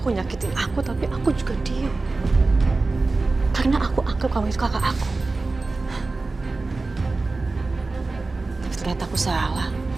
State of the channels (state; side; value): quieter; left; 3.5 dB